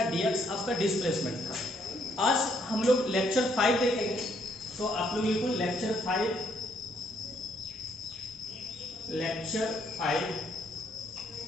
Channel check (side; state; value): both; normal; correlation 0.70